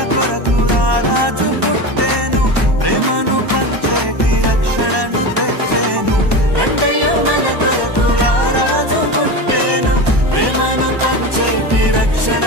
కొరకు రారాజు పుట్టేను ప్రేమను పంచేటి రక్షణను తెచ్చేను రండయ్యో మన కొరకు రారాజు పుట్టేను ప్రేమను పంచేటి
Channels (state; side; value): late; left; 1.1 ms